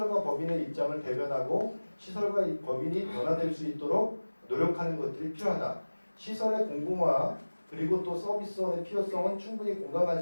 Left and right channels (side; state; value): both; inverted; correlation -1.00